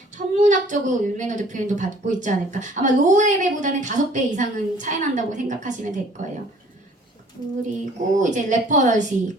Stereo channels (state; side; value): normal; both; correlation 0.54